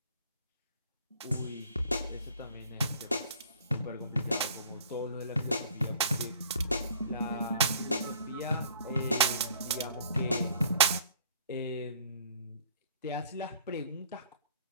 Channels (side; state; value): both; inverted; correlation -0.54